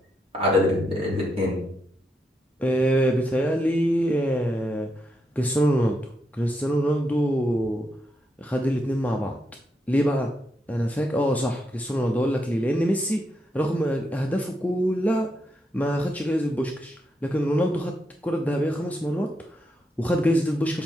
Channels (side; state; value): both; normal; correlation 0.82